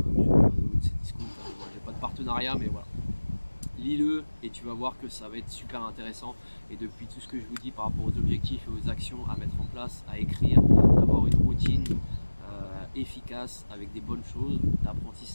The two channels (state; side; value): inverted; both; correlation -1.00